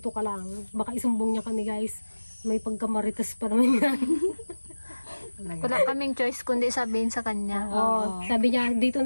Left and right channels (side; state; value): both; inverted; correlation -1.00